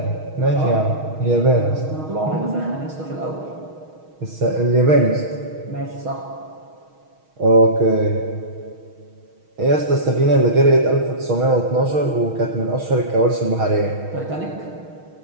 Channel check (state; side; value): late; left; 6.3 ms